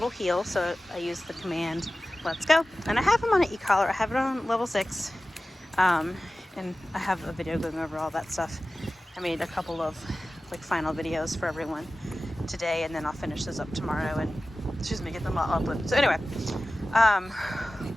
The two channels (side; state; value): both; normal; correlation 0.95